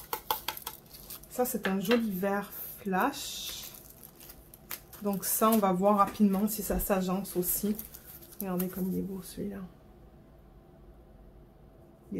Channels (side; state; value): both; identical; correlation 1.00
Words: Ça c'est un joli vert flash. Donc ça on va voir rapidement si ça s'agence aussi. Regardez comme il est beau celui-là. Il